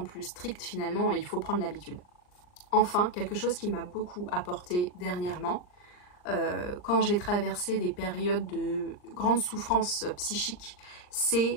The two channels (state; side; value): late; right; 39 ms